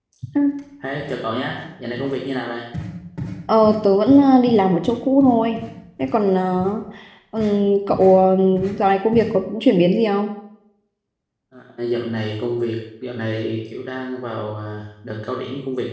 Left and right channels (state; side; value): identical; both; correlation 1.00